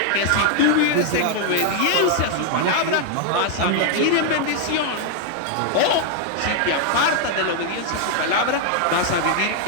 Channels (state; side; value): different; both; correlation 0.00